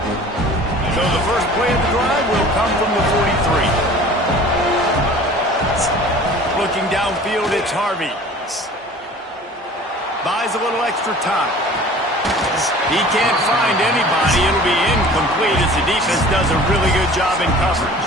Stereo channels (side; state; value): both; normal; correlation 0.45